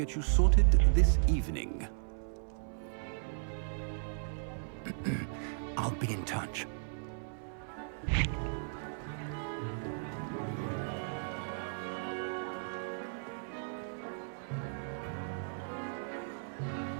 you sorted this evening. I'll be in touch.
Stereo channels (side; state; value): left; silent; 54 dB below the other